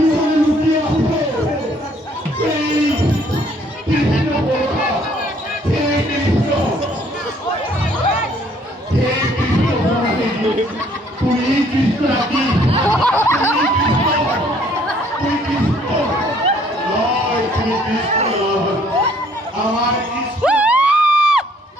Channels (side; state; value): both; normal; correlation 0.62